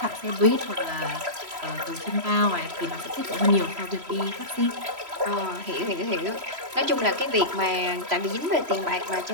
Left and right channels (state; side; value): late; left; 3.0 ms